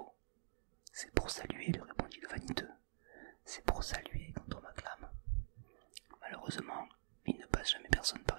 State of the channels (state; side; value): silent; left; digital silence